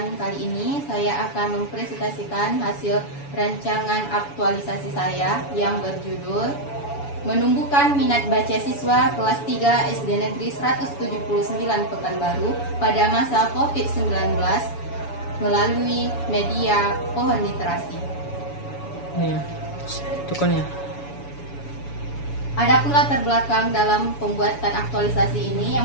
kali ini saya akan mempresentasikan hasil rancangan aktualisasi saya yang berjudul Menumbuhkan Minat Baca Siswa Kelas 3 SD Negeri 179 Pekanbaru pada masa COVID-19 melalui media Pohon Literasi. Nih, tukannya. Adapun latar belakang dalam pembuatan aktualisasi ini,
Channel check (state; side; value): late; right; 7.1 ms